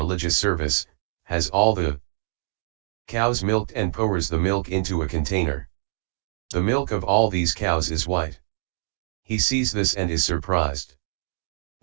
service, has all the cows milked and pours the milk into a container. The milk of all these cows is white. He sees this and is surprised.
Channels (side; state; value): left; silent; digital silence